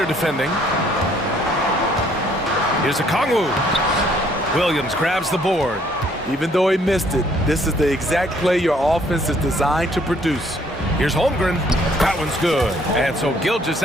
defending. Here's Okongwu. Williams grabs the board. Even though he missed it, this is the exact play your offense is designed to produce. Here's Holmgren. That one's good. And so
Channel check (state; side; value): normal; both; correlation 0.63